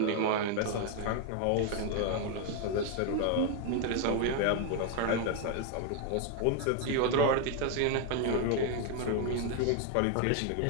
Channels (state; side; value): different; both; correlation 0.01